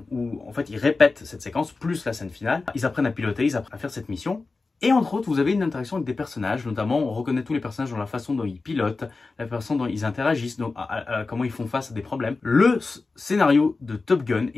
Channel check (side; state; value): right; quieter; 3.8 dB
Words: où en fait ils répètent cette séquence plus la scène finale. Ils apprennent à piloter, ils apprennent à faire cette mission. Et entre autres, vous avez une interaction avec des personnages, notamment on reconnaît tous les personnages dans la façon dont ils pilotent, la façon dont ils interagissent, donc, comment ils font face à des problèmes. Le scénario de Top Gun